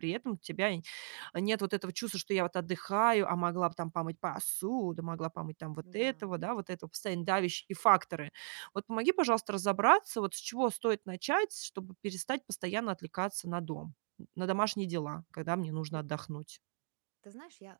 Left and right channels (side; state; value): left; silent; digital silence